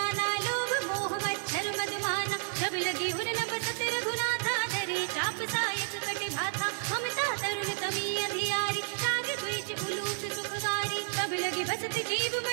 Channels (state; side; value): silent; left; digital silence